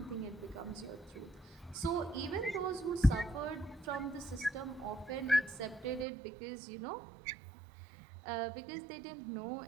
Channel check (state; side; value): drops out; left; at 6.1 s